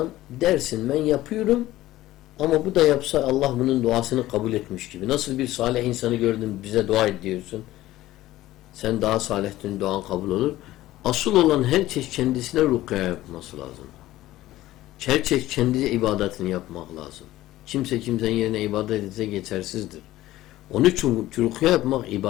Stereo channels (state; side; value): quieter; right; 15.7 dB